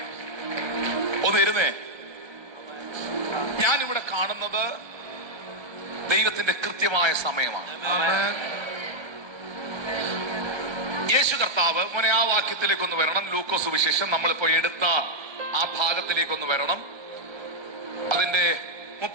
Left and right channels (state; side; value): late; left; 1.3 ms